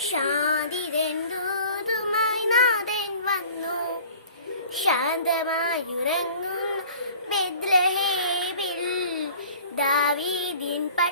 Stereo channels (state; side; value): inverted; both; correlation -0.46